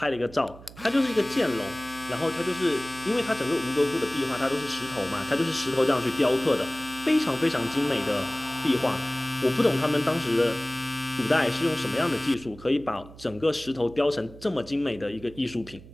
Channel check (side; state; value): right; noise; hum, 19 dB below the sound